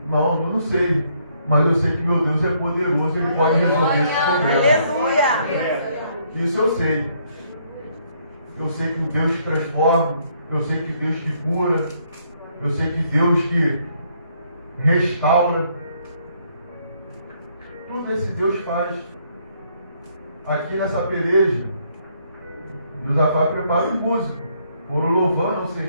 Irmão, eu não sei. Mas eu sei que meu Deus é poderoso, Ele pode resolver esse problema. Aleluia! Isso eu sei. Eu sei que o Deus que transforma, eu sei que Deus que cura, eu sei que Deus que restaura. Tudo esse Deus faz. Aqui nessa peleja, Josafá prepara os músicos, foram louvando ao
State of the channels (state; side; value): inverted; both; correlation -0.69